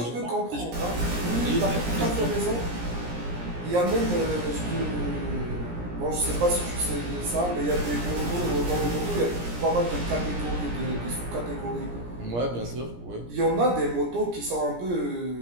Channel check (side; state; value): left; late; 17 ms